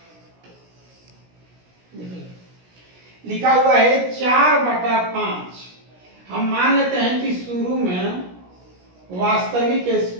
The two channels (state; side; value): late; left; 17 ms